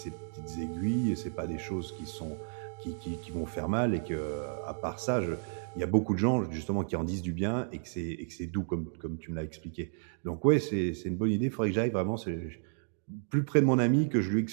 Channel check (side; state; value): left; silent; digital silence